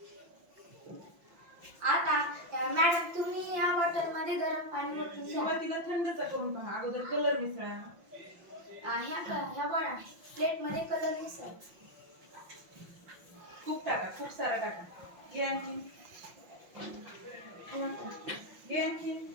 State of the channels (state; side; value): late; left; 5.8 ms